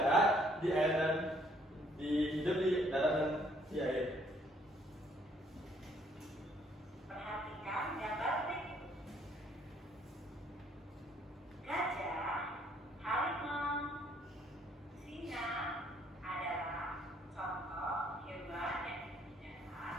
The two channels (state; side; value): normal; both; correlation 0.65